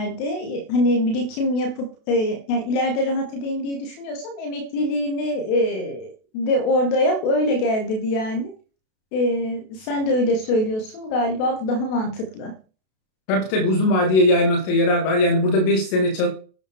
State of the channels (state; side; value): late; right; 32 ms